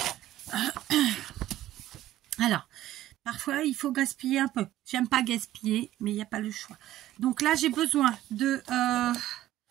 Alors, parfois, il faut gaspiller un peu. J'aime pas gaspiller, mais il n'y a pas le choix. Donc là, j'ai besoin de...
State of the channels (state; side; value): quieter; left; 14.1 dB